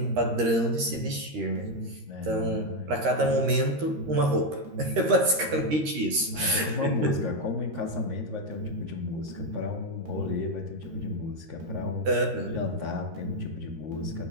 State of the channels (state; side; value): late; left; 13 ms